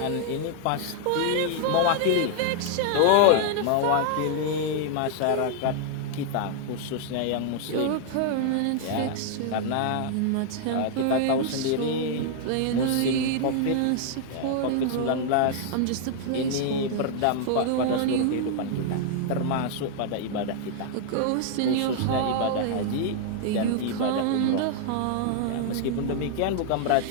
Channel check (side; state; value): both; different; correlation 0.00